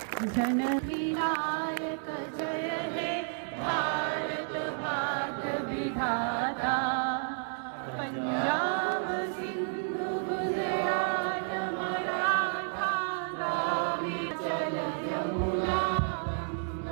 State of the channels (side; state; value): left; silent; digital silence